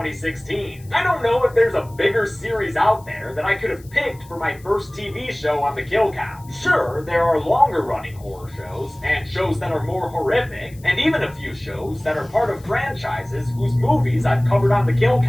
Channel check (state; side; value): noise; left; hiss, 26 dB below the sound